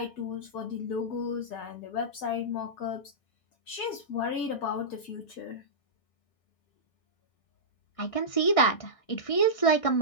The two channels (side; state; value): right; late; 1.6 ms